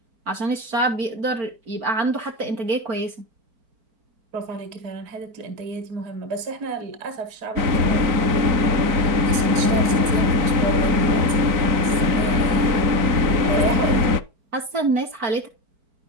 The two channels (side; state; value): left; late; 4.4 ms